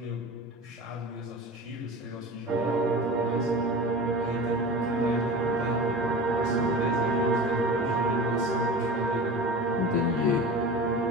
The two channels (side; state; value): both; normal; correlation 0.34